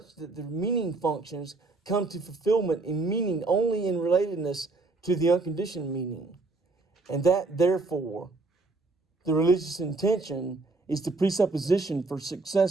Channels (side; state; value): left; quieter; 3.4 dB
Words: that the meaning functions come to fulfillment in meaning only in relatedness to the unconditioned meaning, and that, therefore, the religious intention is the presupposition for